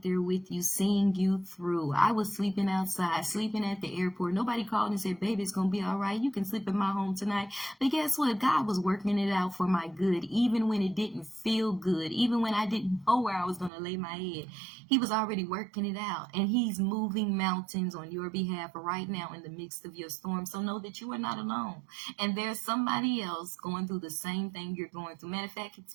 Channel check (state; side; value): drops out; left; at 13.7 s